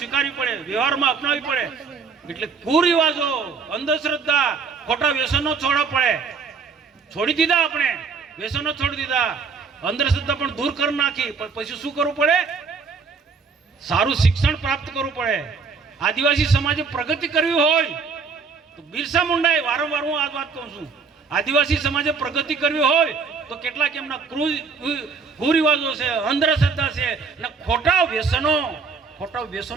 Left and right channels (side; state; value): left; quieter; 5.2 dB